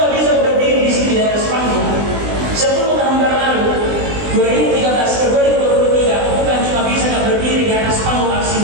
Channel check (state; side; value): late; left; 20 ms